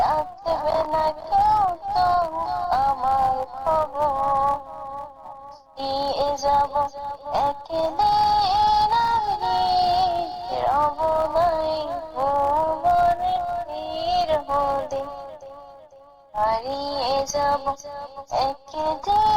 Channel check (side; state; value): both; identical; correlation 1.00